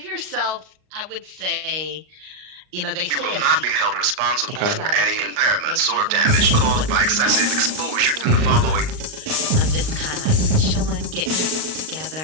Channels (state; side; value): late; left; 38 ms